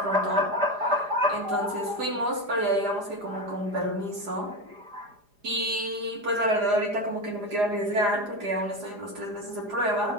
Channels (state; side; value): late; left; 4.9 ms